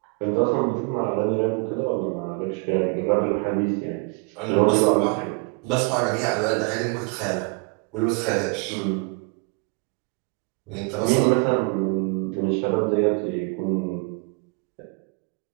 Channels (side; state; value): left; quieter; 32.4 dB